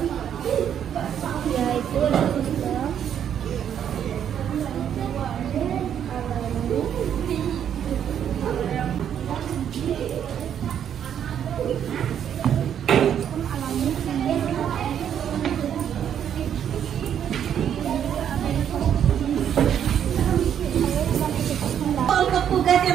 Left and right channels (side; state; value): left; quieter; 9.2 dB